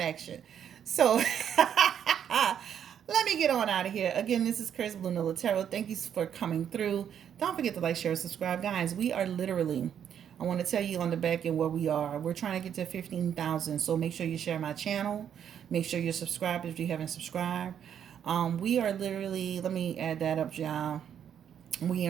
So let me get on out of here. Again, this is Chris Blue Nola Tarot. Thank you for coming through. Don't forget to like, share, subscribe. Guys, we are literally, I want to tell you on the back end where we are. We're trying to get to 15,000. So make sure you share my channel. Make sure you're subscribed if you haven't subscribed. We are literally, let me add that up, y'all. We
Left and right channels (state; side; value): quieter; left; 8.9 dB